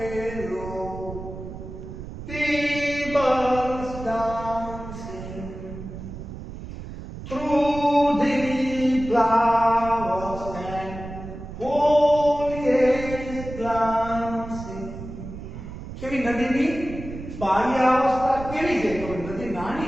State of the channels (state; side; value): noise; right; rumble, 11 dB below the sound